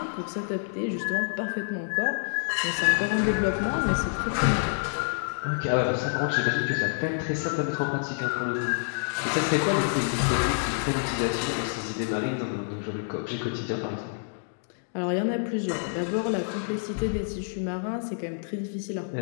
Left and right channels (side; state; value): right; silent; digital silence